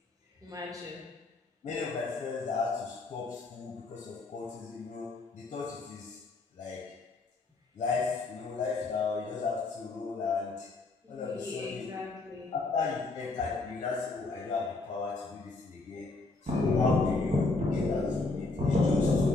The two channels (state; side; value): quieter; right; 3.5 dB